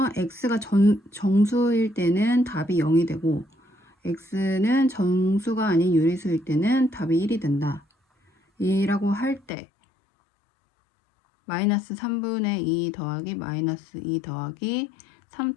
x가 정수일 때는 답이 0이 되고 x는 정수가 아닌 유리수일 때는 답이 1이 된다. 이라고 할 때 마이너스 3분의 2 더하기 마이너스 2 더하기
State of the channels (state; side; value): drops out; right; at 9.5 s